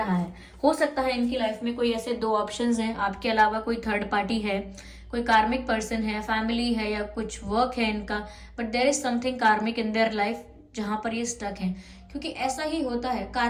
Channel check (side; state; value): both; identical; correlation 1.00